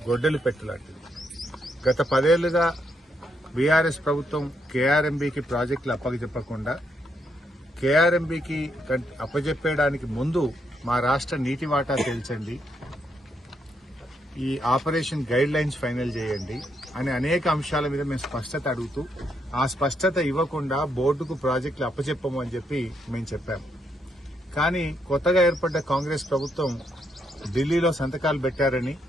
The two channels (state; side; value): normal; both; correlation 0.78